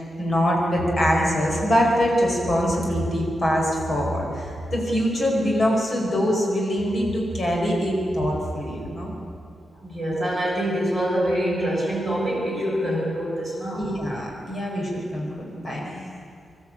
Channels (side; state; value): both; normal; correlation 0.87